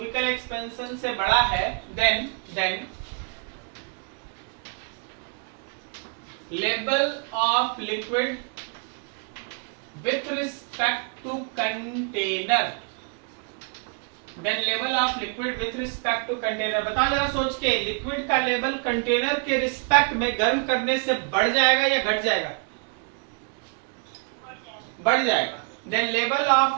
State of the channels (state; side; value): quieter; left; 39.3 dB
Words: एक्सपेंशन से बड़ा है, then level of liquid with respect to container, then level of liquid with respect to container. बता जरा सोच के, लिक्विड का लेवल कंटेनर के रिस्पेक्ट में गर्म करने से बढ़ जाएगा या घट जाएगा? बढ़ जाएगा। Then level